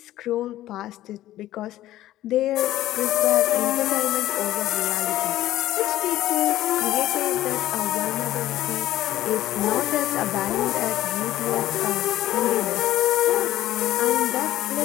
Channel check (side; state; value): right; quieter; 14.4 dB